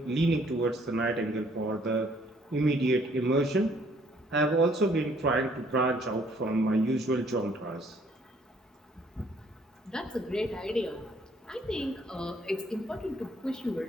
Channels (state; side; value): normal; both; correlation 0.63